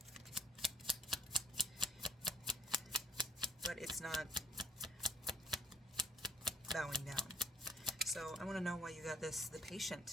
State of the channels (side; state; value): both; normal; correlation 0.61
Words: But it's not bowing down. So I want to know why you got this, the